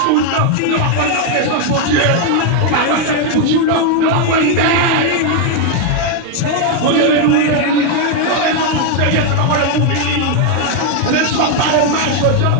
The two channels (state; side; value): different; both; correlation 0.01